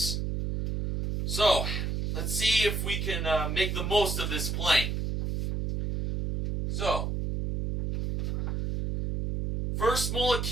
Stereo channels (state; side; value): noise; right; hum, 1 dB below the sound